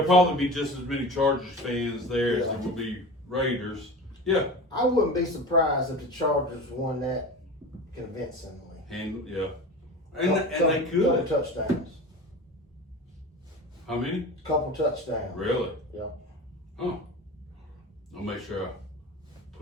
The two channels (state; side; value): normal; both; correlation 0.32